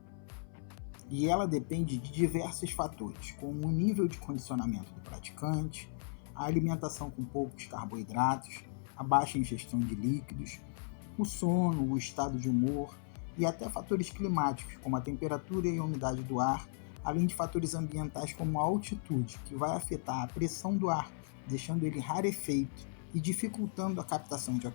E ela depende de diversos fatores, como o nível de condicionamento do praticante, a alimentação com poucos carboidratos, a baixa ingestão de líquidos, o sono, o estado de humor e até fatores climáticos, como a temperatura e a umidade do ar, além de fatores ambientais como a altitude, que vai afetar a pressão do ar, deixando ele rarefeito e dificultando a captação de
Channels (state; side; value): silent; right; 54 dB below the other